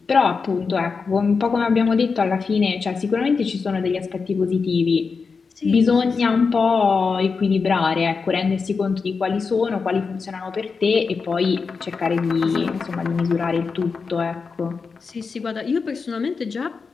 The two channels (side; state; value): right; quieter; 5.0 dB